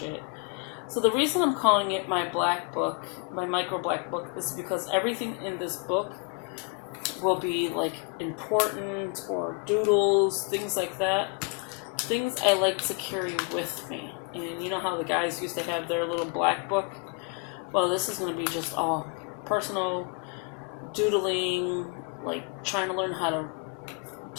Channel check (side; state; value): right; quieter; 34.8 dB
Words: So the reason I'm calling it my black book, my micro black book, is because everything in this book will be like important or doodles, things like that. Things I like to carry with me. And you know how the guys used to have their little black book? Well, this is going to be just all personal doodling, like trying to learn how to